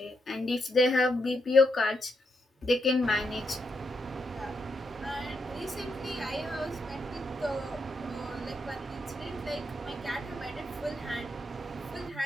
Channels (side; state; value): both; normal; correlation 0.81